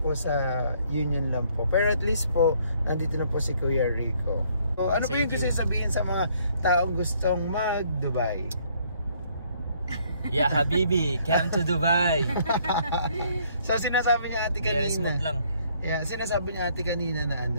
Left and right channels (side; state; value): both; inverted; correlation -0.65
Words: sa Union lang po. Pero at least po, nandito na po si Kuya Rico. So, ano po yung gusto sabihin sa mga taong gustong mag-Dubai? Yeah, Habibi, come to Dubai. So, sinasabi niya ate Very kanina. smooth lang. Yeah, sinasabi niya ate kanina na